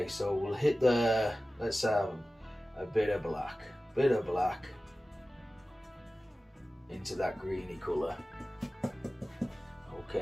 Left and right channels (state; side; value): normal; both; correlation 0.96